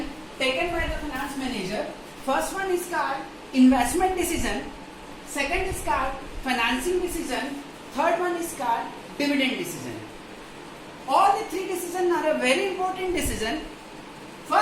taken by the finance manager. First one is called investment decision. Second is called financing decision. Third one is called dividend decision. All the three decisions are a very important decision.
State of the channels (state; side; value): identical; both; correlation 1.00